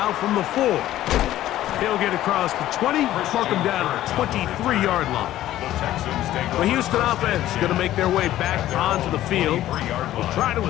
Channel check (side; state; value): right; quieter; 13.7 dB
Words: from the 4. He'll get across the 20, mark him down at the 23-yard line. The Houston offense is going to make their way back onto the field. They'll try to